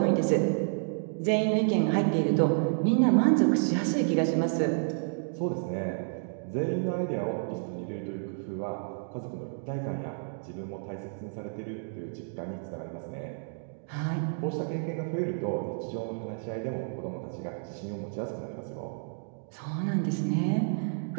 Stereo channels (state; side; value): silent; left; digital silence